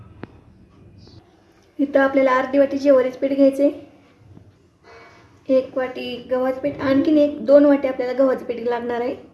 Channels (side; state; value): both; identical; correlation 1.00